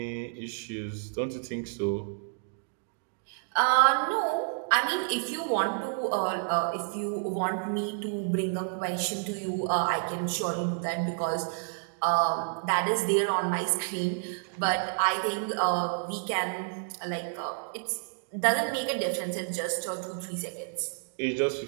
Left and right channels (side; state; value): left; silent; digital silence